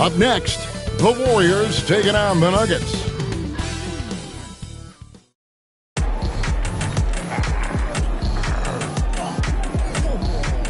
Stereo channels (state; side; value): identical; both; correlation 1.00